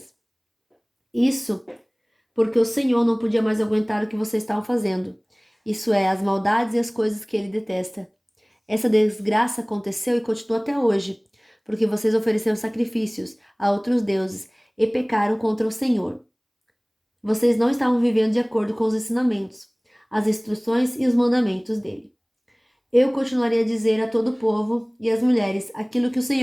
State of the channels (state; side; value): identical; both; correlation 1.00